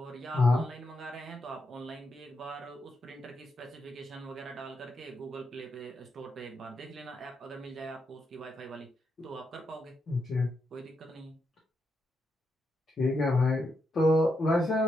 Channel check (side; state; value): both; normal; correlation 0.83